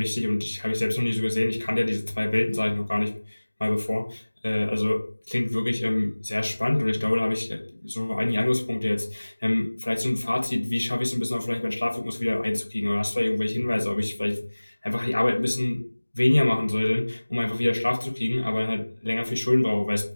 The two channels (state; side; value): inverted; both; correlation -1.00